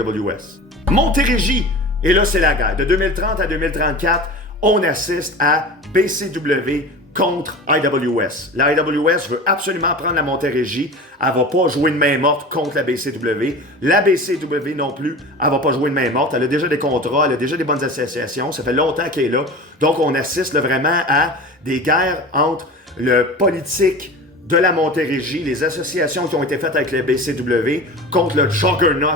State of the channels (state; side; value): normal; both; correlation 0.34